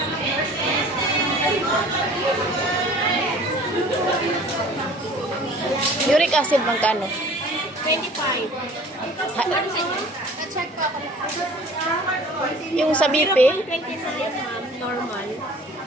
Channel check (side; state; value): both; normal; correlation 0.48